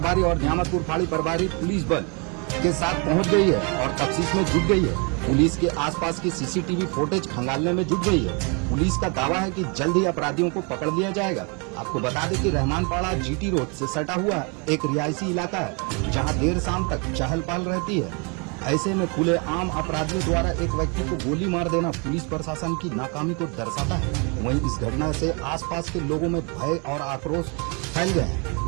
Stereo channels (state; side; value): quieter; left; 33.4 dB